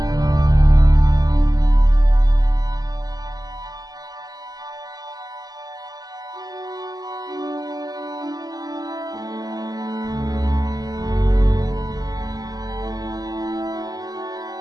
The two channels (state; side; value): late; left; 0.18 ms